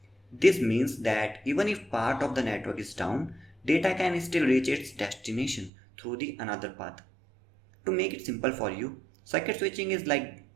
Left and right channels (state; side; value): drops out; left; at 5.7 s